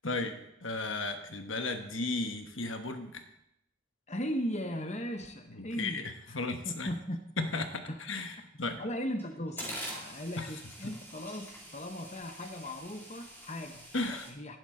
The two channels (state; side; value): normal; both; correlation 0.45